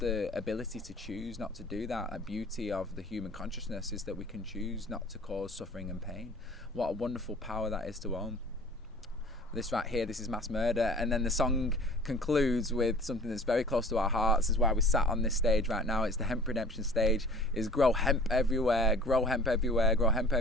ability to choose not to do that. A beauty of the human consciousness is that we can choose not to cause suffering and pain. What a wonderful power that is to own. This right here, this is mass murder. And then the song concludes with something that's very close to our hearts. This is why we sat on this stage right now. It's the hemp redemption stage. Is grow hemp everywhere, grow hemp everywhere, grow hemp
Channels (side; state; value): both; normal; correlation 0.45